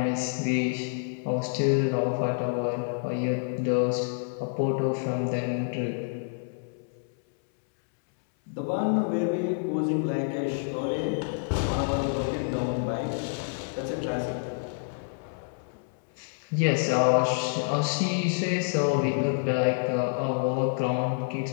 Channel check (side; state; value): right; silent; 59 dB below the other